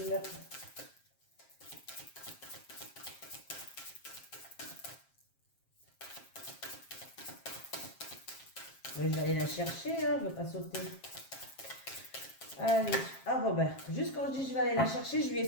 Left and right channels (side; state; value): right; late; 7.5 ms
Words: Je vais aller la chercher, hein, je ne vais pas sauter. Allez, ah bon ben, juste quand je dis je vais aller la chercher, je lui ai